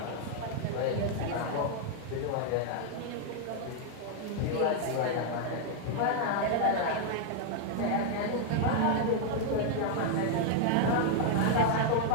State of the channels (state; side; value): different; both; correlation 0.00